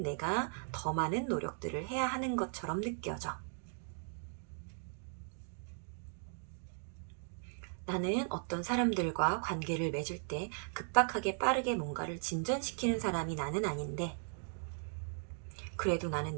내가 더 많은 노력들을 해야 하는 것처럼 느껴져. 나는 어떤 사람들과 관계를 맺을 때 급박하게 빠르게 뭔가를 진전시키는 사람이 나는 아닌데 그래도 나는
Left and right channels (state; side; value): silent; left; 53 dB below the other